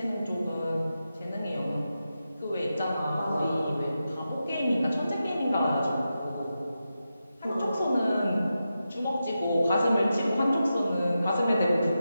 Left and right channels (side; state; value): both; inverted; correlation -0.90